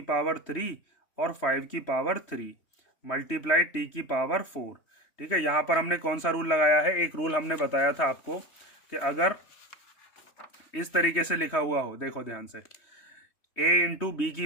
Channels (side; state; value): right; late; 3.1 ms